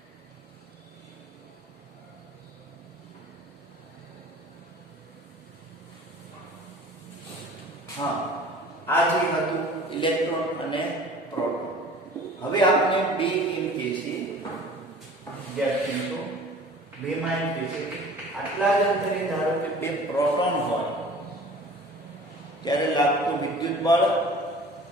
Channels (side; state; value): both; normal; correlation 0.45